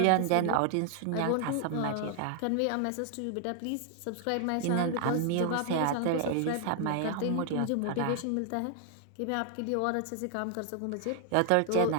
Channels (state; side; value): different; both; correlation 0.00